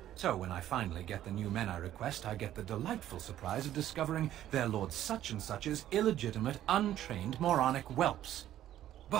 So when I finally get the new men I request, I get the delightful surprise of discovering their Lord Such-and-Such's illegitimate, untrained, moronic whelps.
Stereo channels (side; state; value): left; quieter; 12.3 dB